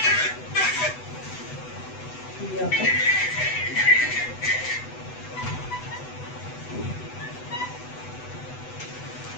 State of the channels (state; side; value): late; right; 8.0 ms